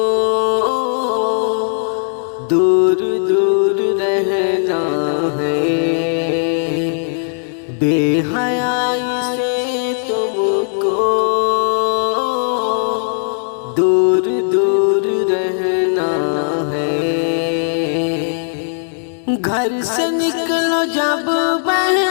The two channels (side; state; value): right; silent; 68 dB below the other